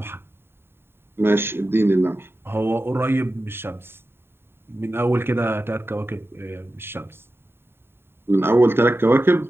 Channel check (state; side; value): late; left; 0.11 ms